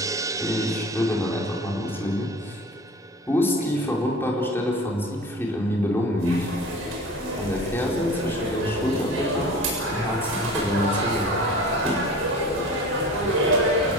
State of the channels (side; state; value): both; normal; correlation 0.40